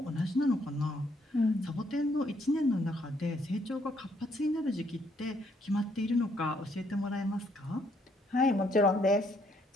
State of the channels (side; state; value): both; normal; correlation 0.70